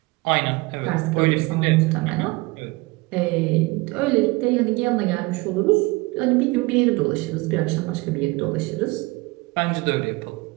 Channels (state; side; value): quieter; left; 23.6 dB